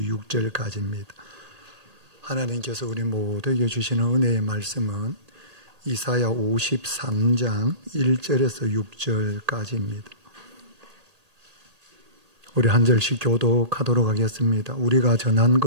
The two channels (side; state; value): left; late; 1.8 ms